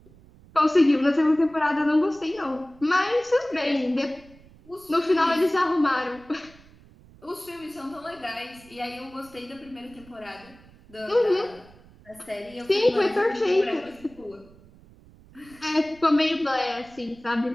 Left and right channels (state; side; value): noise; right; rumble, 25 dB below the sound